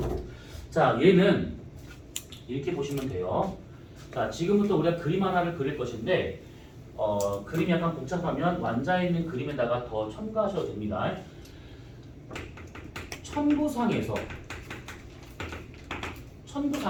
자, 얘는 이렇게 보시면 돼요. 자, 지금부터 우리가 그림 하나를 그릴 것인데 그림이 약간 복잡하면 완자에 있는 그림에다가 더 첨가하셔도 됩니다. 천구상에서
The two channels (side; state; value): both; identical; correlation 1.00